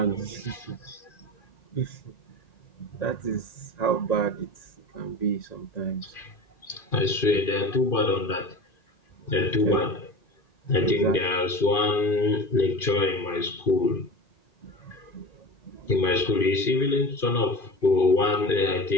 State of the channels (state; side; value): late; right; 2.5 ms